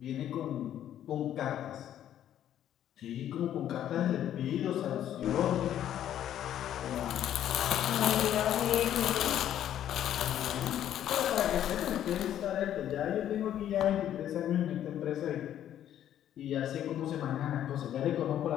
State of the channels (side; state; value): right; quieter; 11.0 dB